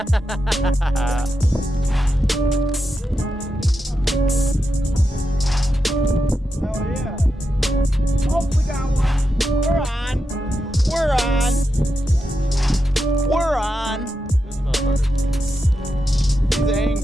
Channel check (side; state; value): both; normal; correlation 0.87